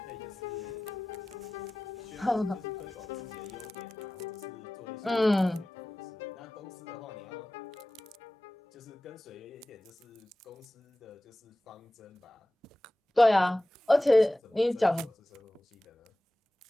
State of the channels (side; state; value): both; normal; correlation 0.96